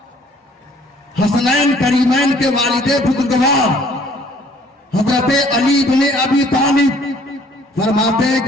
حسنین کریمین کے والد بزرگوار حضرت علی ابن ابی طالب فرماتے ہیں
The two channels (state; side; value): normal; both; correlation 0.58